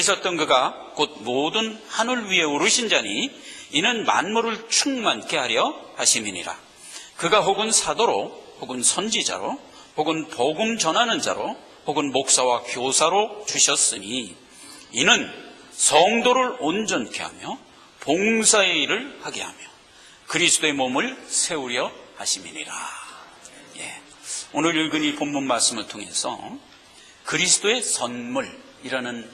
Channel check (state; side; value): identical; both; correlation 1.00